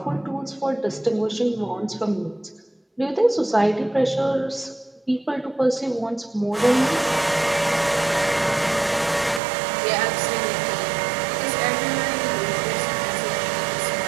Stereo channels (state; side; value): drops out; left; at 9.4 s